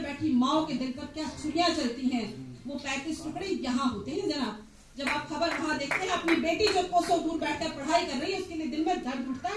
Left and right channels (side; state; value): both; identical; correlation 1.00